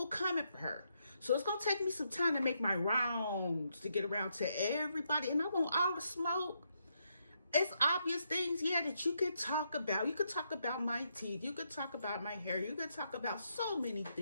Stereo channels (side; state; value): both; inverted; correlation -0.79